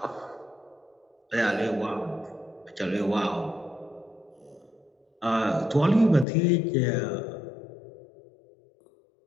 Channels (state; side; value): drops out; right; at 6.2 s